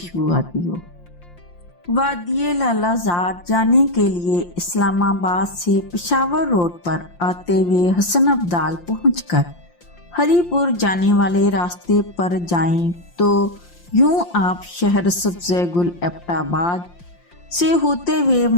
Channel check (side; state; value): right; late; 5.7 ms